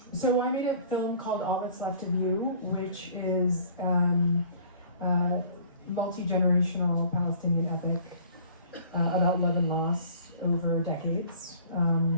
So I made a film called All That's Left of You, which is multi-generational Palestinian epic about love and loss over decades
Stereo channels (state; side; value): inverted; both; correlation -0.50